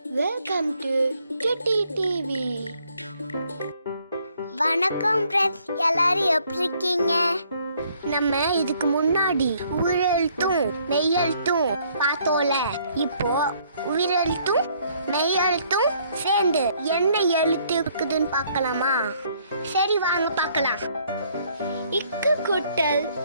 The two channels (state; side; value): inverted; both; correlation -0.65